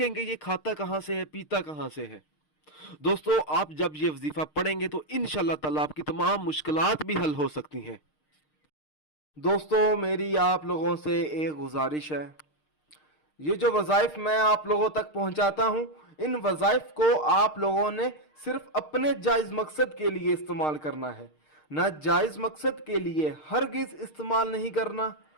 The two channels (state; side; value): late; right; 6.5 ms